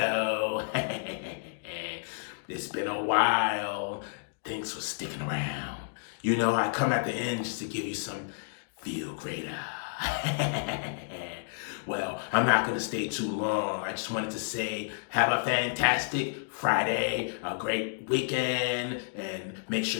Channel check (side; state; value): right; silent; digital silence